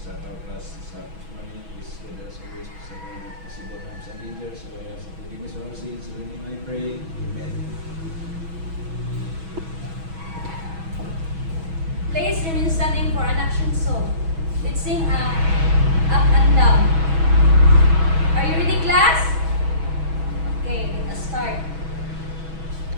our class this morning, please with us always to seven possible harms and dangers. So I ask for forgiveness of our sins. In your name I pray. Amen. Please remain standing for an action song. Let's sing Up and Down. Are you ready, class? Okay, let us start.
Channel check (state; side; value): late; left; 6.2 ms